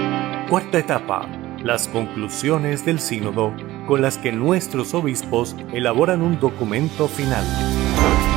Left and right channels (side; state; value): left; quieter; 16.8 dB